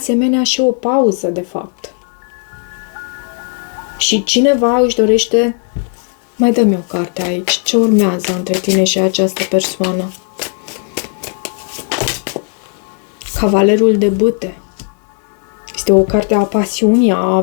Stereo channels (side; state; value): right; quieter; 38.3 dB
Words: și o pauză, de fapt. Și cineva își dorește... Mai dă-mi o carte aici. Ce urmează între tine și această persoană? Cavalerul de bâte. Este o carte a pasiunii, a